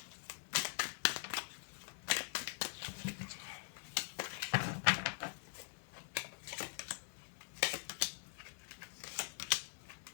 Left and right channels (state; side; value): silent; right; digital silence